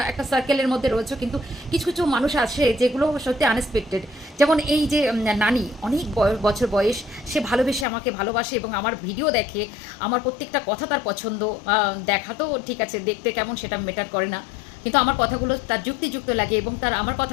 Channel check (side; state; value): right; drops out; at 7.9 s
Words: একটা সার্কেলের মধ্যে রয়েছো, কিন্তু কিছু কিছু মানুষ আছে যেগুলো সত্যি আনএক্সপেক্টেড। যেমন এই যে নানি, অনেক বছর বয়স, সে ভালোবেসে আমাকে ভালোবাসে এবং আমার ভিডিও দেখে, আমার প্রত্যেকটা কথা তার পছন্দ। দেখা তো ঠিক আছে, দেখতে কেমন সেটা ম্যাটার করে না, কিন্তু আমার কথাগুলো তার যুক্তিযুক্ত লাগে এবং তার আমার